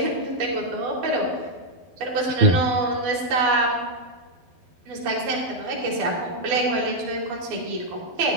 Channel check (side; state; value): left; late; 12 ms